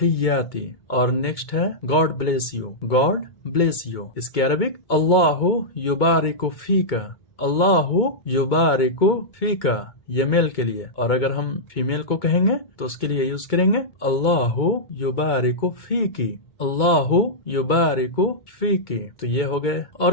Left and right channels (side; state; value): right; late; 2.2 ms